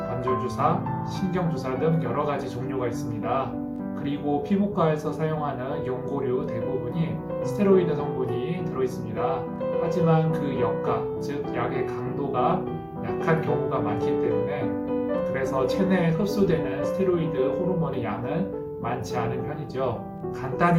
신경주사 등 여러 가지 종류가 있습니다. 그리고 피부과에서 사용하는 연고류 대부분이 스테로이드 성분이 들어있습니다. 하지만 그 역가, 즉 약의 강도가 약한 경우가 많기 때문에 그래서 체내에 흡수되는 스테로이드 호르몬의 양은 많지 않은 편이죠.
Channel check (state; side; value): identical; both; correlation 1.00